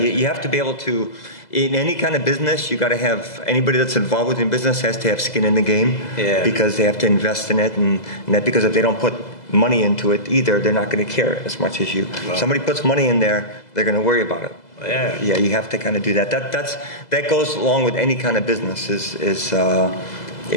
have to be able to, in any kind of business, you got to have, anybody that's involved within business has to have skin in the game. Yeah. Because they have to invest in it, and that, because if they don't put money into it either, they're not going to care as much as you. Wow. Somebody puts money in there, they're going to worry about it. Yeah. Yeah, you have to kind of do that. That goes along with any kind of business. Is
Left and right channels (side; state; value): right; late; 2.0 ms